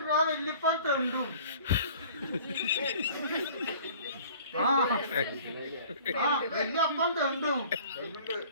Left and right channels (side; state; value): both; inverted; correlation -0.48